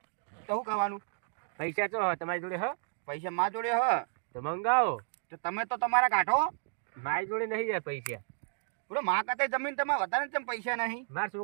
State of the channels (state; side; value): silent; left; digital silence